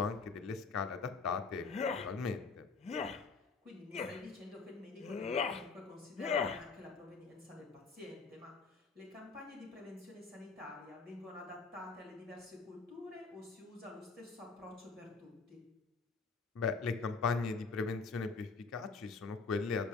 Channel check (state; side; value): quieter; right; 4.6 dB